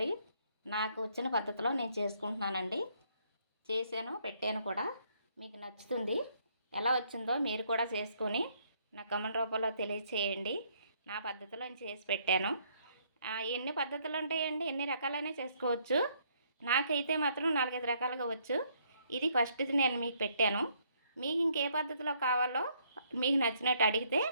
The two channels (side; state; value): both; inverted; correlation -0.69